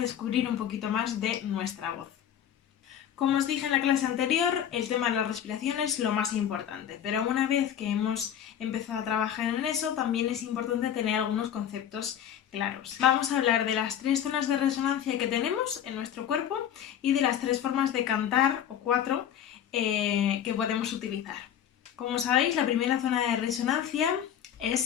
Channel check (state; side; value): quieter; right; 9.7 dB